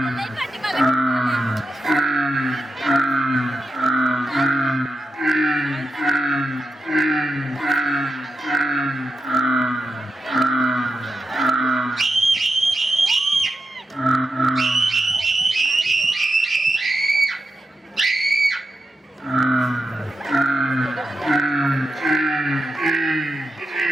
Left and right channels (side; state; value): both; normal; correlation 0.88